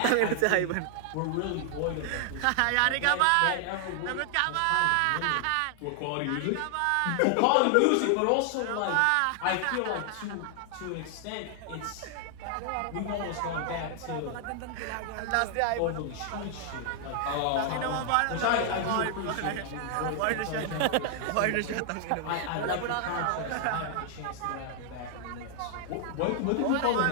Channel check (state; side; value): different; both; correlation 0.00